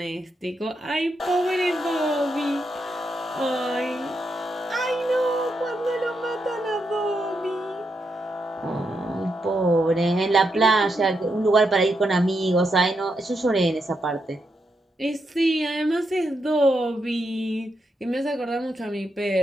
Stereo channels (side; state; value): both; normal; correlation 0.82